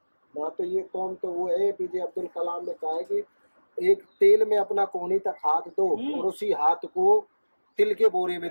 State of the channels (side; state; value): both; inverted; correlation -1.00